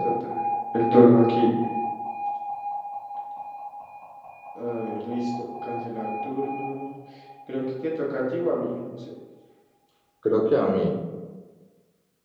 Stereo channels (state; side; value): identical; both; correlation 1.00